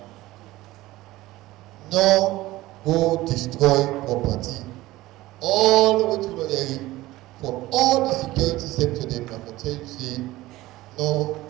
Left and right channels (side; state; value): left; quieter; 17.7 dB